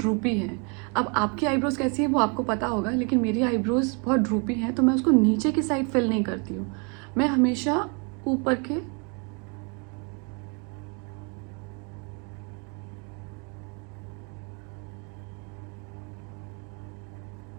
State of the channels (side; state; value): left; quieter; 35.2 dB